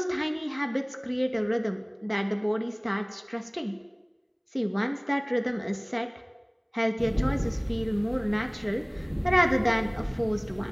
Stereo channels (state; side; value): identical; both; correlation 1.00